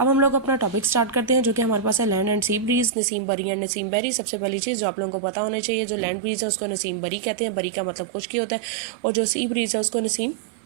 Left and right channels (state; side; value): drops out; left; at 3.0 s